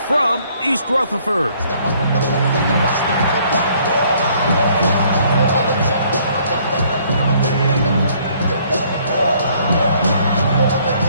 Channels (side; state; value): both; inverted; correlation -0.63